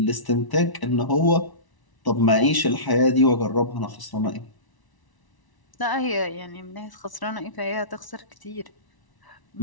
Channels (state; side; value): late; right; 1.0 ms